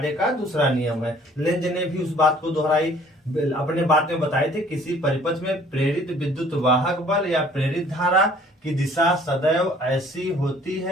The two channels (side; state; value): both; normal; correlation 0.56